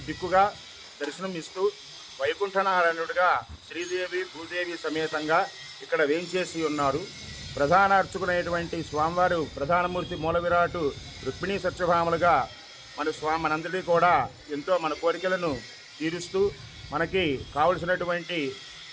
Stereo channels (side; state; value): both; identical; correlation 1.00